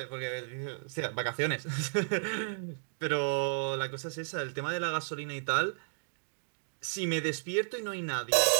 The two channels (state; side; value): silent; left; digital silence